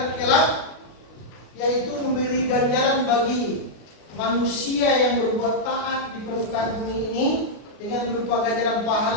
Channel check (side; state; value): right; late; 32 ms